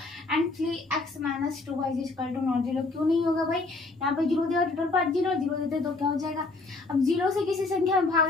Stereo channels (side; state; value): right; quieter; 3.4 dB